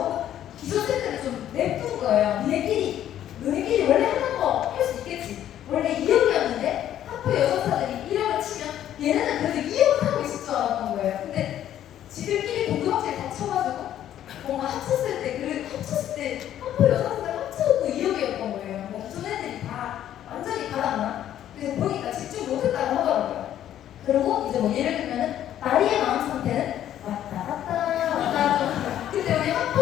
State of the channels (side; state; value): right; quieter; 11.4 dB